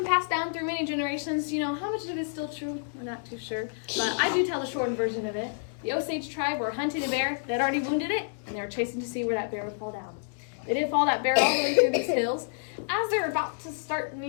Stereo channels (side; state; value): right; silent; digital silence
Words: passed down through many generations. You know, how much of it is still true? We're not too sure. But I do tell the shortened version of it. The Osage tribe were hunting a bear that already wounded it, and they were chasing to see where that bear would fall down. They did fall that bear all the way through these hills. As they were about to start